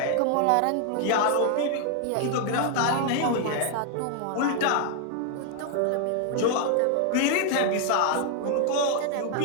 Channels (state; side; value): different; both; correlation 0.00